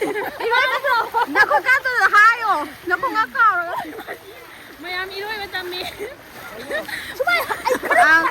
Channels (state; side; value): identical; both; correlation 1.00